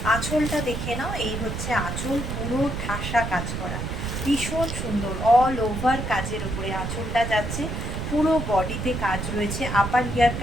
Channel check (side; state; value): right; noise; rumble, 4 dB below the sound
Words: আঁচলটা দেখে নাও, এই হচ্ছে আঁচল, পুরো ঠাসা কাজ করা, ভীষণ সুন্দর। অল ওভার কাজের উপরে আঁচলটা যাচ্ছে, পুরো বডিতে কাজ রয়েছে। আপার